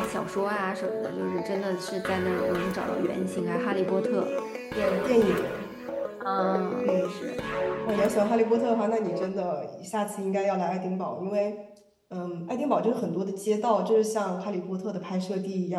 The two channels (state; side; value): identical; both; correlation 1.00